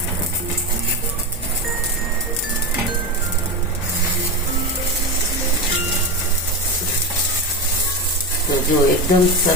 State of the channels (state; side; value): normal; both; correlation 0.18